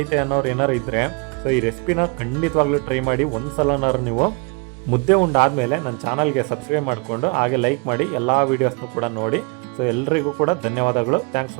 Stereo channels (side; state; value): left; quieter; 31.3 dB